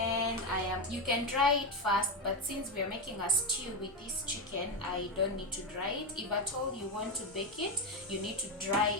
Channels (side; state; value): both; normal; correlation 0.11